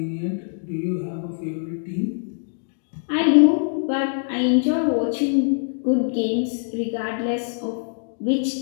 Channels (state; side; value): silent; right; digital silence